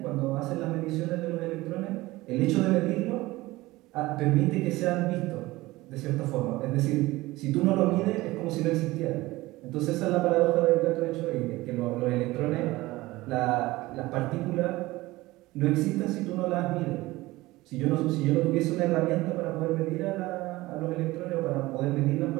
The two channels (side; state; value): left; quieter; 19.2 dB